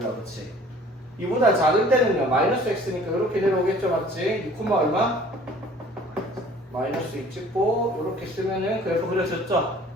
그치? 2보다 작을 때는요, 마이너스 x니까 이렇게 내려오겠죠, 맞지? 2, 얼마? 마이너스 2 찍고 이렇게 쓰면은 그래프 그려졌죠?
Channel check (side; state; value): both; normal; correlation 0.51